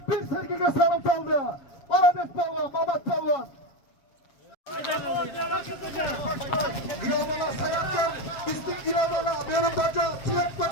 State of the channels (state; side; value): late; right; 7.2 ms